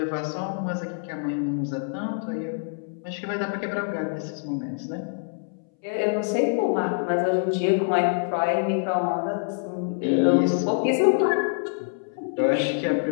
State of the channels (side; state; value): right; silent; 61 dB below the other